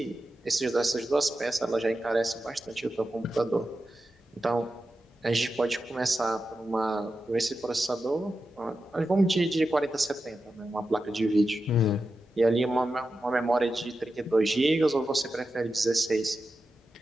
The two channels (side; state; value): both; normal; correlation 0.91